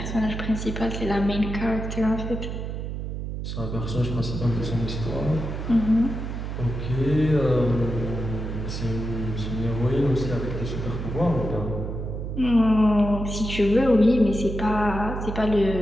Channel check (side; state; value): right; noise; hum, 5 dB below the sound